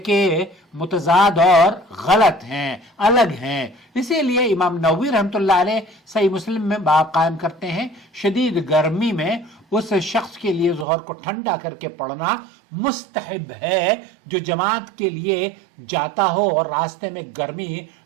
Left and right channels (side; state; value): left; drops out; at 10.9 s